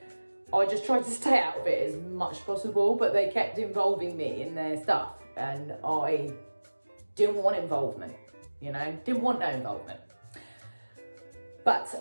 I just tried to stay out of it as much as possible, but they kept involving me in their stuff and I didn't want involvement, didn't want no involvement. But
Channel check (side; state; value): both; inverted; correlation -1.00